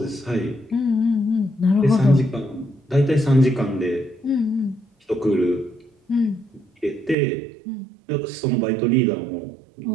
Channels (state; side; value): drops out; left; at 7.2 s